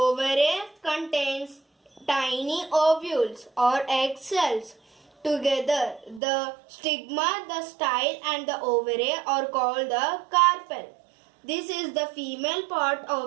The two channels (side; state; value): left; drops out; at 6.2 s